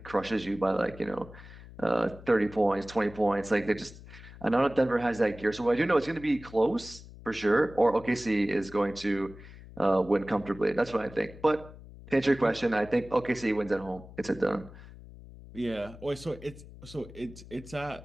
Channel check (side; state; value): left; noise; hum, 17 dB below the sound